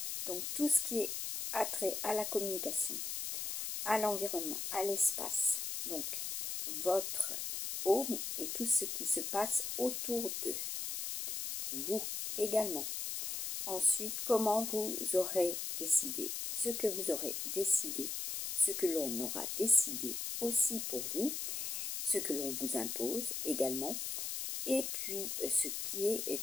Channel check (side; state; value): left; noise; hiss, 3 dB below the sound